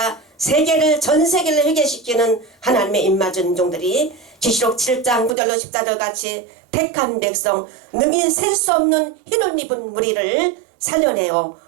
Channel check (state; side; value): drops out; left; at 5.4 s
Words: 세계를 전 세계를 회개시키는 하나님의 입맞은 종들이 계시록 7장 9절로 14절 같이 택한 백성 능히 셀 수 없는 흰옷 입은 무리를 살려내어